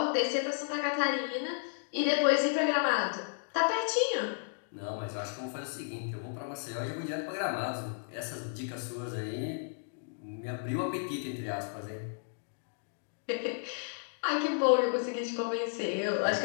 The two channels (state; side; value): silent; right; digital silence